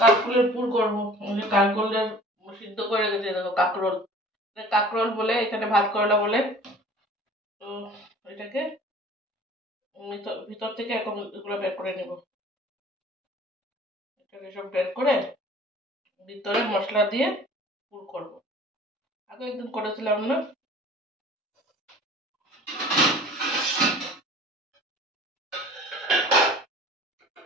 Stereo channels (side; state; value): both; normal; correlation 0.47